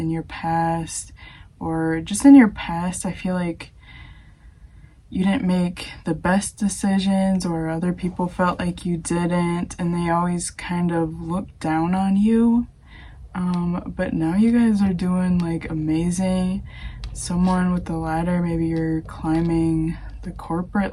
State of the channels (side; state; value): both; identical; correlation 1.00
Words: your past, or just in your past. I feel like you didn't make the best decisions, or other people felt like you didn't, and they always kind of looked down on you. But now you guys are doing like amazing. Someone with the ladder, maybe you're climbing the corporate